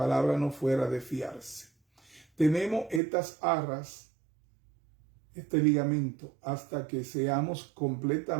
no fuera de fiarse. Tenemos estas arras, este ligamento, hasta que seamos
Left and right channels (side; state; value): left; drops out; at 3.0 s